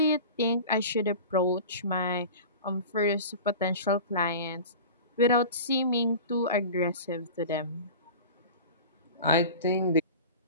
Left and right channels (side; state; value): both; inverted; correlation -0.35